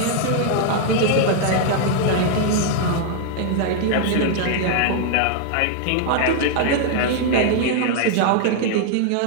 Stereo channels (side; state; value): both; different; correlation 0.00